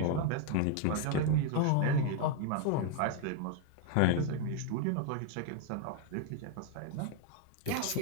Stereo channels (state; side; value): different; both; correlation 0.01